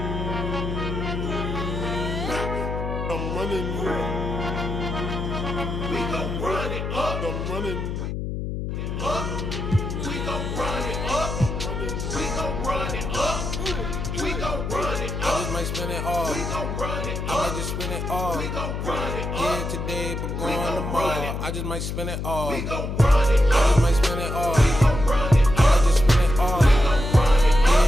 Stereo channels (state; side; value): noise; left; hum, 4 dB below the sound